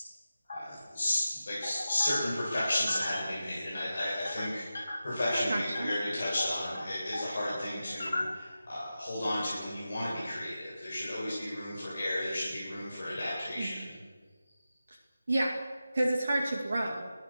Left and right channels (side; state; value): both; inverted; correlation -0.92